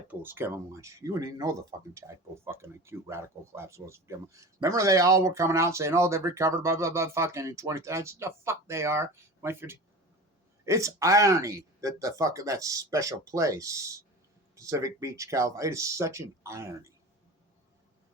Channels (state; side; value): normal; both; correlation 0.33